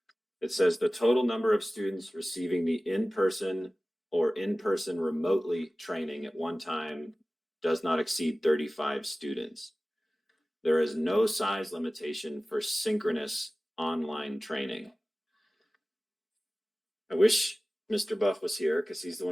It says the total number of students receiving the in-person or in-person remotely training at one time does not exceed 35 students. There is no size limitation for synchronous online training. I wish Mr. Buff was here because he's the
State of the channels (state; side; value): normal; both; correlation 0.97